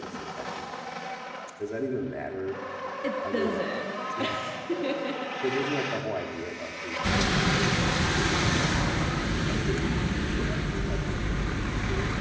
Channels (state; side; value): identical; both; correlation 1.00